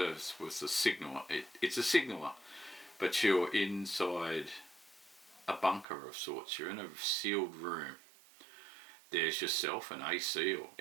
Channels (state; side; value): drops out; left; at 5.9 s